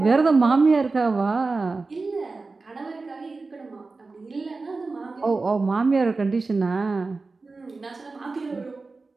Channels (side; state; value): left; quieter; 3.8 dB